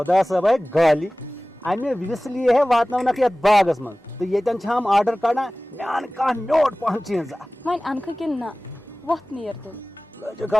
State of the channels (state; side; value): normal; both; correlation 0.98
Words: صٲب آے گالی امہِ وِسلی ہے واتناونکھ یتھ باغس منٛز تہٕ ییٚتٮ۪ن چھِ ہم آرڈر کڑان مےٚ ان کانٛہہ میوٗٹھ پہن چیٖزا. وۄنۍ انکھٕ کِنہٕ نہ وۄتھ نیر تیٚلہِ. لٔجِکھ